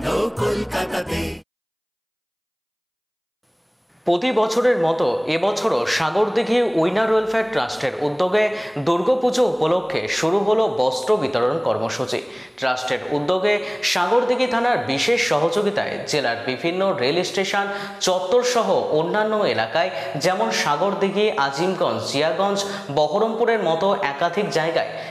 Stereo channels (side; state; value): both; identical; correlation 1.00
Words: কলকাতাতে। প্রতি বছরের মতো এবছরও সাগরদিঘি উইনার ওয়েলফেয়ার ট্রাস্টের উদ্যোগে দুর্গাপুজো উপলক্ষে শুরু হলো বস্ত্র বিতরণ কর্মসূচি। ট্রাস্টের উদ্যোগে সাগরদিঘি থানার বিশেষ সহযোগিতায় জেলার বিভিন্ন রেল স্টেশন চত্বর সহ অন্যান্য এলাকায় যেমন সাগরদিঘি, আজিমগঞ্জ, জিয়াগঞ্জ, বহরমপুরের মতো একাধিক জায়গায়